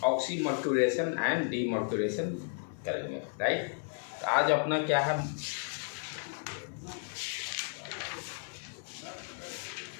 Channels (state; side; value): silent; right; 56 dB below the other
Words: ऑक्सीमर्क्यूरेशन एंड डीमर्क्यूरेशन करेंगे। राइट, तो आज अपना क्या है,